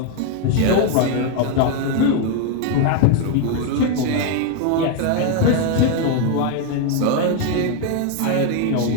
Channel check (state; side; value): different; both; correlation 0.01